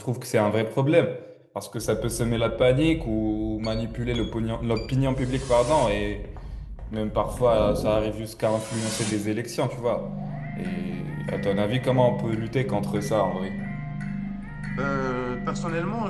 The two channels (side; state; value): both; identical; correlation 1.00